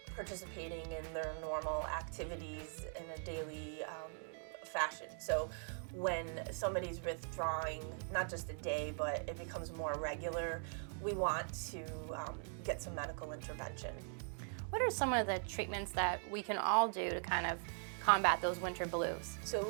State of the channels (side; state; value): left; silent; 50 dB below the other